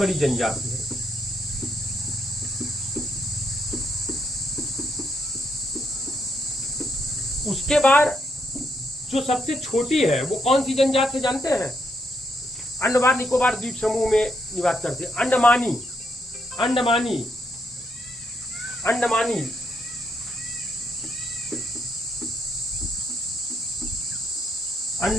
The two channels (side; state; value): both; normal; correlation 0.77